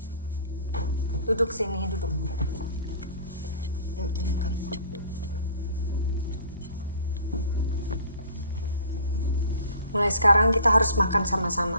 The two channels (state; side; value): inverted; both; correlation -0.47